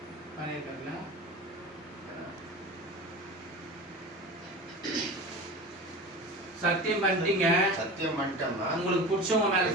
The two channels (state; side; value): normal; both; correlation 0.32